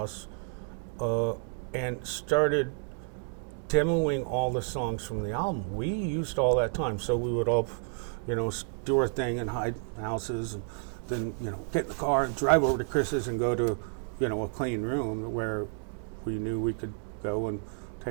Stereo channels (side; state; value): left; silent; 57 dB below the other